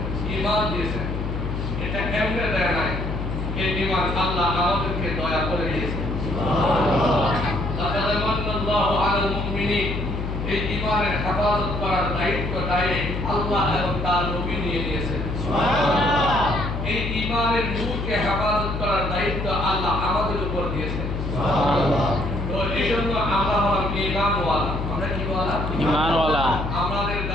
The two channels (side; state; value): left; noise; hum, 3 dB below the sound